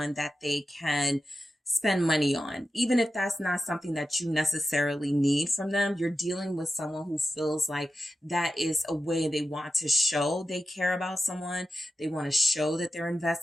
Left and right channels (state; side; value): normal; both; correlation 0.92